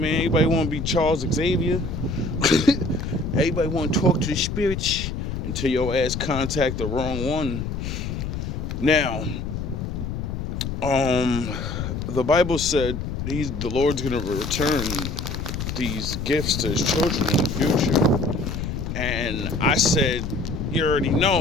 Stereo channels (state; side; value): noise; left; rumble, 4 dB below the sound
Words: everybody wanna be Charles Xavier. Everybody wanna talk to the spirits until your ass contact the wrong one. Now, the Bible said the Lord's gonna return these gifts to his children in the future. And I said, you already